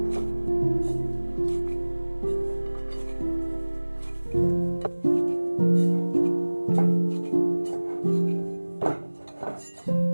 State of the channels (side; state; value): both; inverted; correlation -1.00